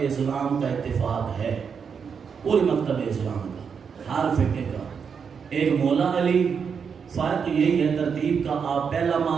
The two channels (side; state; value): left; quieter; 6.4 dB